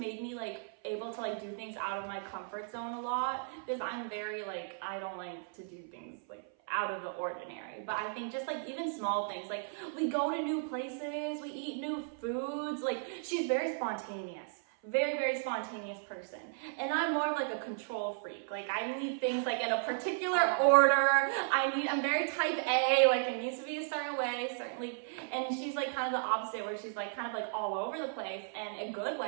me like able to like do things out of my comfort zone a lot, because I'm very like, I don't like to do things like out of the ordinary. But I think just like even small things, like we go to new places, we eat new foods, like she's very spontaneous. Very, very spontaneous person. And I'm more of like a control freak. Like I need things like in a particular order. I'm very type A, like it needs to be a certain way, certainly. And she's like kind of the opposite, where she's like kind of like all over the place, and a good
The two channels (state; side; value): silent; left; 54 dB below the other